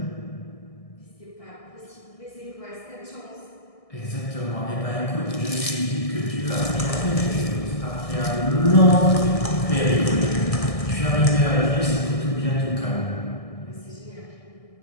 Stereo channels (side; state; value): right; late; 1.6 ms